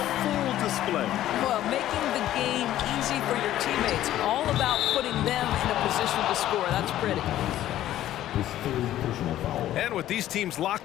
full display. Well, making the game easy for your teammates. All about putting them in a position to score. That's pretty. And with these teams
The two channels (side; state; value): right; quieter; 13.1 dB